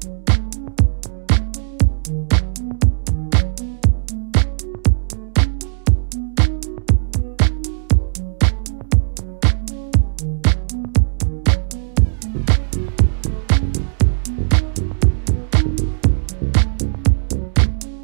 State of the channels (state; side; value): silent; left; digital silence